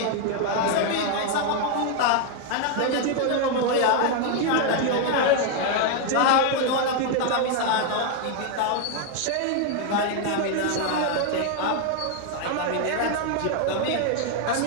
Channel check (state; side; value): different; both; correlation 0.00